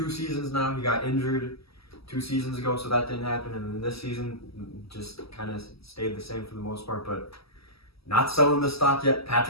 seasons now. He got injured 2 seasons ago, so that didn't happen. And then this season just kind of stayed the same for the most part. But not selling the stock yet.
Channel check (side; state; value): right; late; 0.76 ms